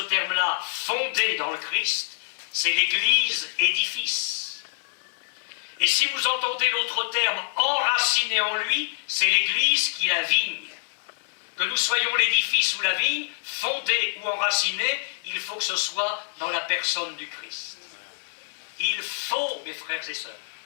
terme-là, fondé dans le Christ, c'est l'Église édifice. Et si vous entendez l'autre terme, enraciné en lui, c'est l'Église qui la vigne. Que nous soyons l'édifice ou la vigne, fondé ou enraciné, il faut que ce soit dans la personne du Christ. Il faut, mes frères et sœurs,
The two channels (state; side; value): silent; right; 61 dB below the other